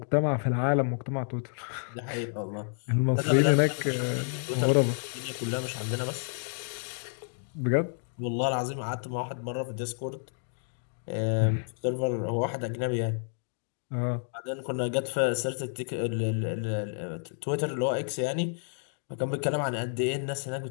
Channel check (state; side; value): silent; right; digital silence